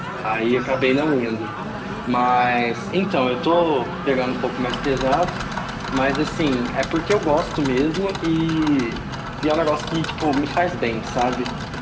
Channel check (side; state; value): both; identical; correlation 1.00